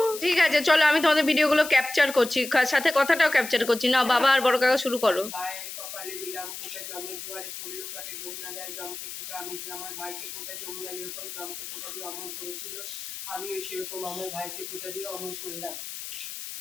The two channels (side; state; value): left; noise; hiss, 9 dB below the sound